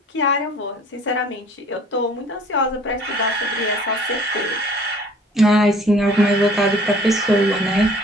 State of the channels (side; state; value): both; normal; correlation 0.52